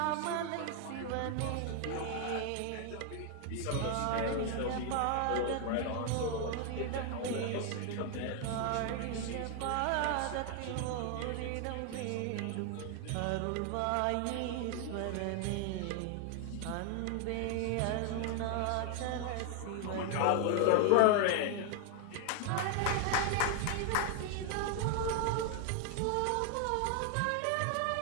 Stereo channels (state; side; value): different; both; correlation 0.00